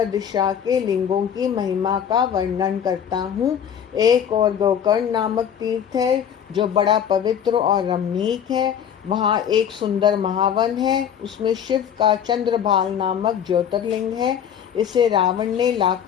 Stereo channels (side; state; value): right; quieter; 8.6 dB